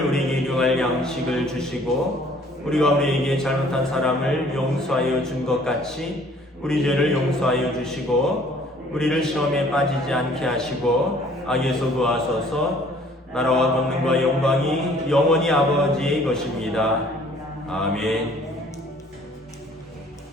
우리에게 일용할 양식을 주시고 우리가 우리에게 잘못한 사람을 용서하여 준 것 같이 우리 죄를 용서하여 주시고 우리를 시험에 빠지지 않게 하시고 악에서 구하소서. 나라와 권능과 영광이 영원히 아버지의 것입니다. 아멘.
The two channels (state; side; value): normal; both; correlation 0.56